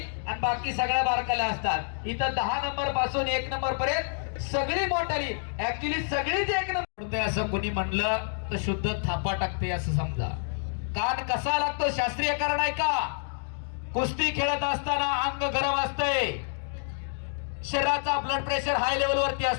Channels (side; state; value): right; silent; digital silence